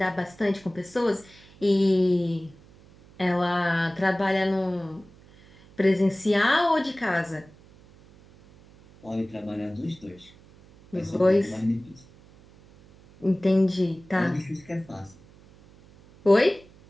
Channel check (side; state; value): right; noise; hum, 25 dB below the sound